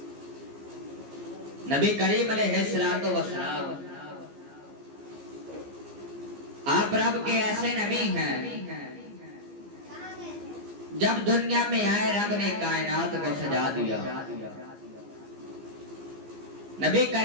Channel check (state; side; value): late; left; 15 ms